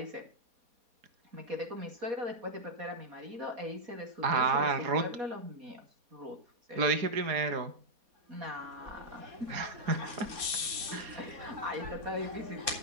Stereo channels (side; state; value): left; late; 4.2 ms